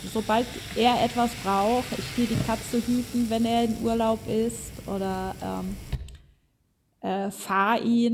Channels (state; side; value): identical; both; correlation 1.00